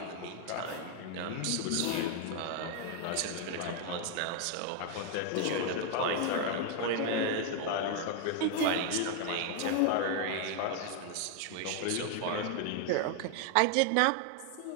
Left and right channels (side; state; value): both; different; correlation 0.00